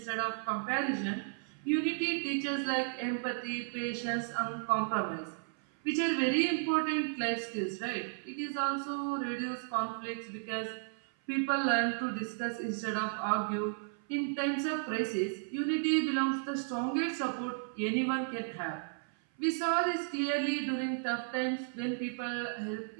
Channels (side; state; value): left; silent; 55 dB below the other